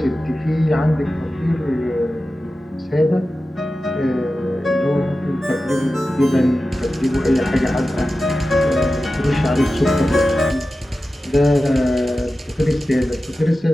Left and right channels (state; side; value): normal; both; correlation 0.94